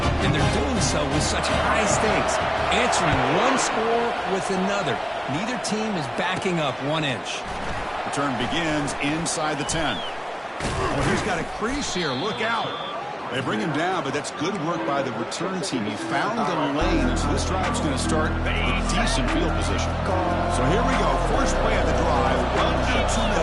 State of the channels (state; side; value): identical; both; correlation 1.00